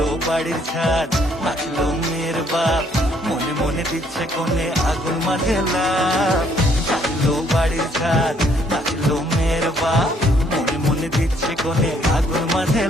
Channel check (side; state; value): both; normal; correlation 0.66